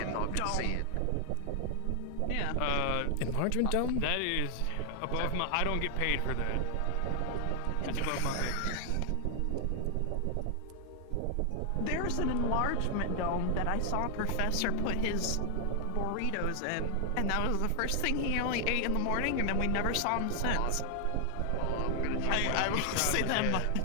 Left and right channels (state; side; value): different; both; correlation 0.00